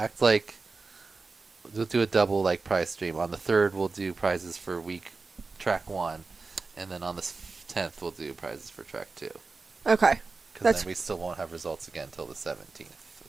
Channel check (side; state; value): left; quieter; 4.1 dB